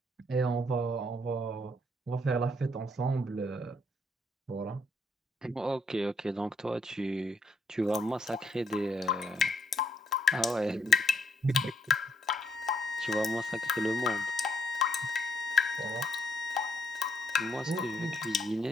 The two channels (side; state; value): both; normal; correlation 0.72